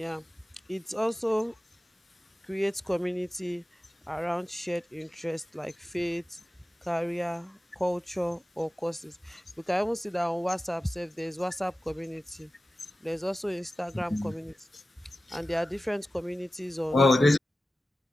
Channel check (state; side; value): normal; both; correlation 0.95